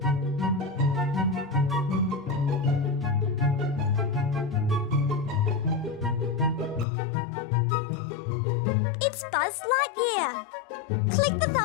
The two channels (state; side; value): drops out; right; at 6.9 s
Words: It's Buzz Lightyear. Click the